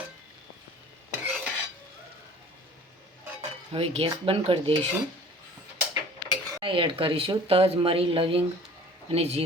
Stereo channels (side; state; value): both; normal; correlation 0.47